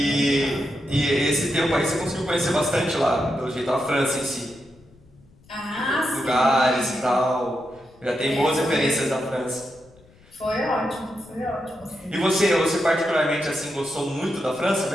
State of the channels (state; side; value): noise; left; rumble, 28 dB below the sound